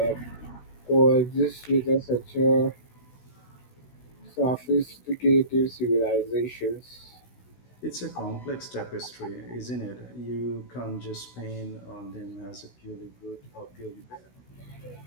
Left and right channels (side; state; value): right; late; 16 ms